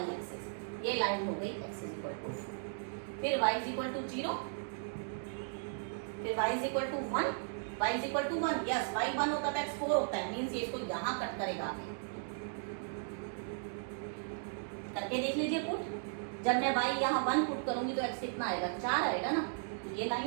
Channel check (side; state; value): left; silent; digital silence